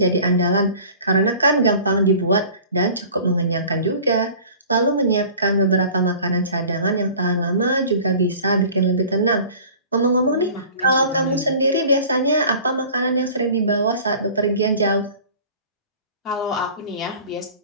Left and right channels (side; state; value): both; inverted; correlation -0.44